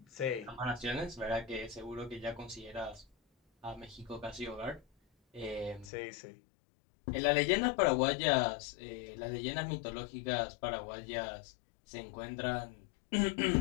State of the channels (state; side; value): drops out; right; at 5.9 s